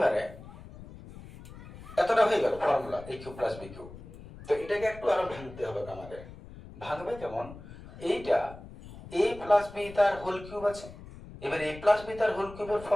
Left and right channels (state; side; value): noise; left; rumble, 16 dB below the sound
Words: এতটা হয়ে গেল ফর্মুলা এ কিউব প্লাস বি কিউব। তো এটাকে একটু আরো ভাঙতে হবে আমাদের। ভাঙবে কেমন, এইটা এ প্লাস বি তার হোল কিউব আছে, এবার এ প্লাস বি তার হোল কিউবের